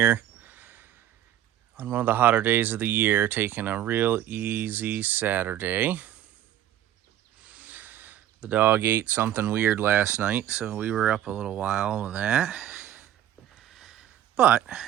on one of the hotter days of the year, taking a real easy Saturday. The dog ate something weird last night, so we were up a little while with that. But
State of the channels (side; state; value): left; quieter; 11.9 dB